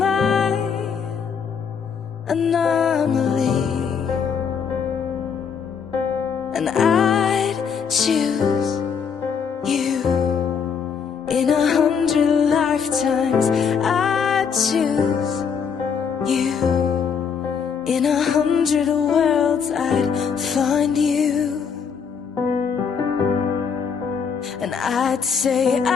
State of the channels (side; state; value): right; quieter; 6.5 dB